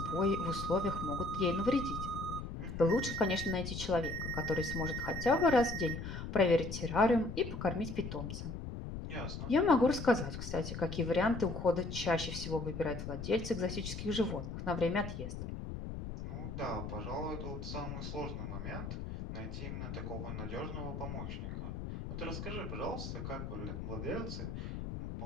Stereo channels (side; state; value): left; noise; rumble, 6 dB below the sound